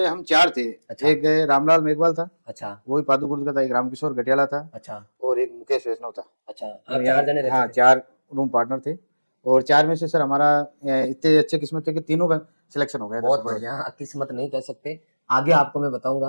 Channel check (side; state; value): both; inverted; correlation -1.00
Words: हम 4 थे, अच्छा, एक रामलाल मेघवाल था, अच्छा, वो भी पादुकुर्द का था, एक रामकिशोर गटियाला था अच्छा, और एक मुकेश वैष्णव था। अच्छा। हम आप यहाँ 4 जने रहते हाँ थे? 4 रूम पार्टनर थे और 4 में से सर हमारा इतने अच्छे किस्मत थे कि तीनों का सिलेक्शन हो गया था बहुत सुपरवाइजर। बढ़िया, किस्मत नहीं कह सकते। आगे आपको मैं